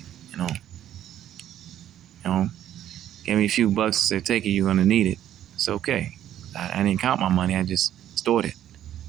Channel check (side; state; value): left; quieter; 11.4 dB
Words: Gave me a few bucks and said, take it, you're going to need it. It's okay. I didn't count my money. I just stored it,